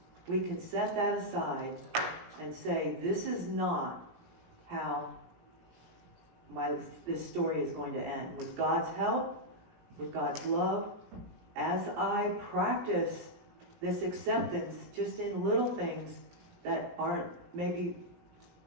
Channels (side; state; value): left; late; 17 ms